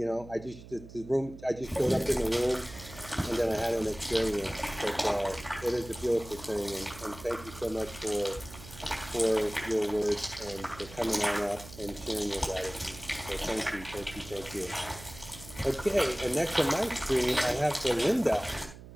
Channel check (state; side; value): noise; right; hum, 16 dB below the sound